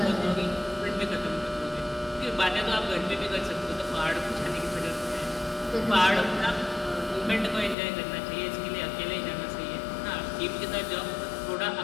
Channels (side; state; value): right; drops out; at 7.8 s